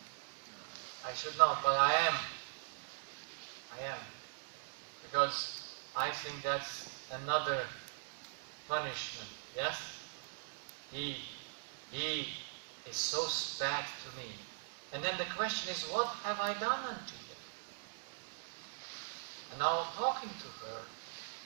I should not, but I am. I am. Because I think that's another punishment. Yes? He is so bad to me. And then the question is, what have I done unto him? And now talking to her,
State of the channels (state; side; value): silent; left; digital silence